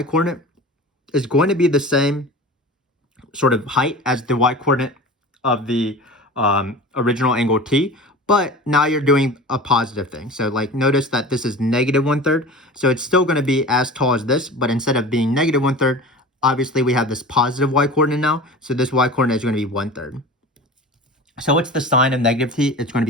coordinate is going to be the same sort of height as the y coordinate of the original angle t. But now you're doing a positive thing. So like notice that this is negative 1/3. So it's still going to be as tall as this, but instead of being negative 1/3, obviously we have this positive y coordinate now. So this y coordinate is going to be 1/3. So what's the sine of negative t? It's going to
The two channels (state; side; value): normal; both; correlation 0.35